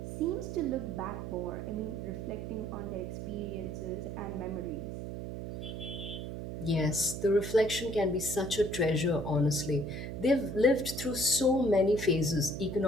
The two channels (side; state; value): right; noise; hum, 6 dB below the sound